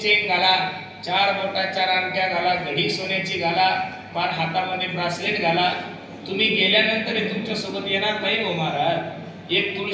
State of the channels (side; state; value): both; identical; correlation 1.00